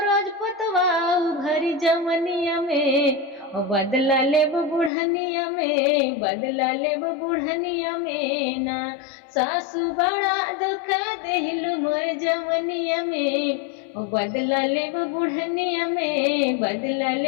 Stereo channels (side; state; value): right; drops out; at 4.9 s